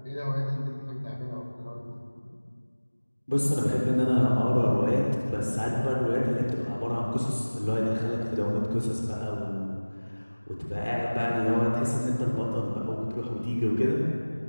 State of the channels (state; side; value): inverted; both; correlation -1.00